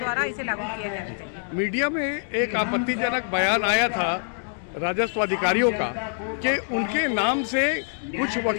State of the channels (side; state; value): right; silent; digital silence